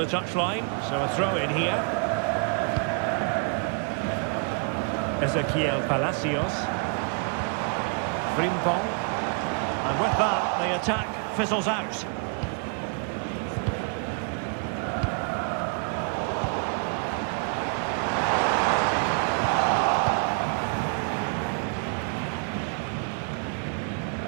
touchline, so a throw in here. Ezequiel Palacios. Frimpong. And with that, the attack fizzles out.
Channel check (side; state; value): left; quieter; 39.4 dB